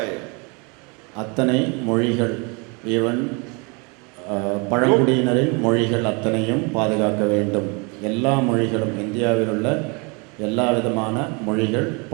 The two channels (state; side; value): quieter; left; 31.2 dB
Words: அத்தனை மொழிகள், ஈவன் பழங்குடியினரின் மொழிகள் அத்தனையும் பாதுகாக்க வேண்டும். எல்லா மொழிகளும், இந்தியாவில் உள்ள எல்லா விதமான மொழிகள்,